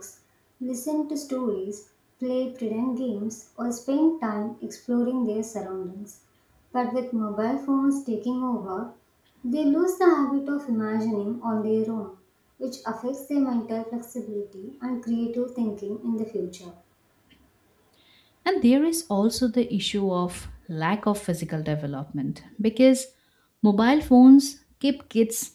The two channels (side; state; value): both; identical; correlation 1.00